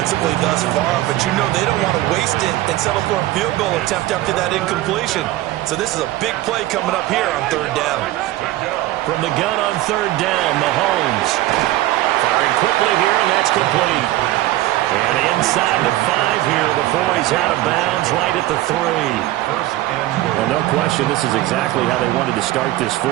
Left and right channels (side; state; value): left; quieter; 16.1 dB